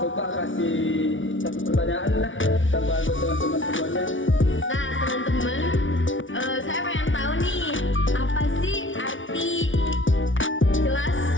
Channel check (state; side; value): late; right; 0.56 ms